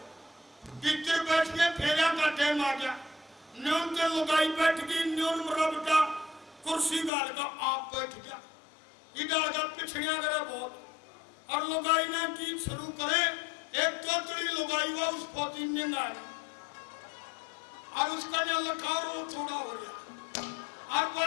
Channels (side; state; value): right; drops out; at 7.1 s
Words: भीतर बैठ के फेरा का टाइम आ गया, न्यून के लुगाई बैठ गई, न्यून मरबटा कुर्सी गाल का आप बैठ गया, इधर का पिछड़िया करे बहुत, और लुगाई ने गीत शुरू करे, एक तोतड़ी लुगाई हुआ उस फौजी ने गाया, और उसका जो लखार वो थोड़ा हो गया, और